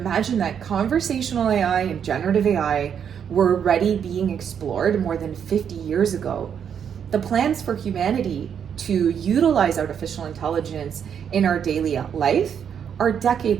that conversational AI and generative AI were already being explored more than 50 years ago, the plans for humanity to utilize artificial intelligence in our daily life are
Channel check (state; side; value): quieter; left; 8.0 dB